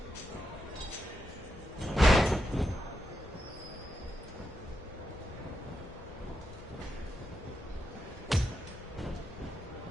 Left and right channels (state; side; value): normal; both; correlation 0.85